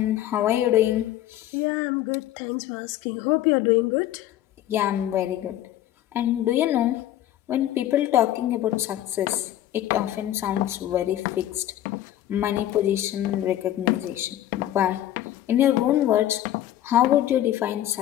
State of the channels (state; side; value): quieter; right; 12.8 dB